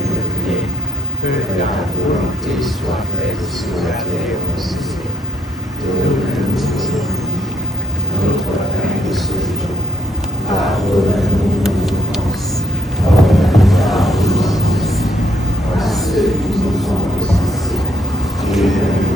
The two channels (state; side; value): normal; both; correlation 0.70